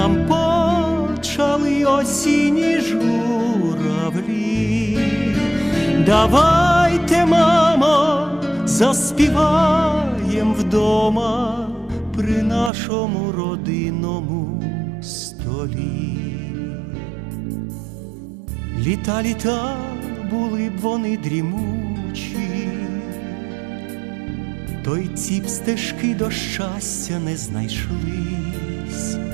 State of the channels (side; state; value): left; drops out; at 12.7 s